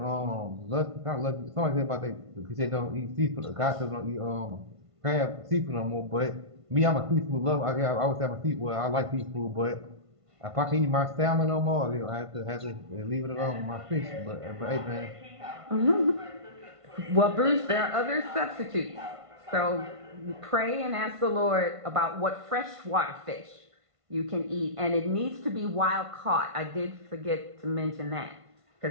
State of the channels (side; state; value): left; late; 1.5 ms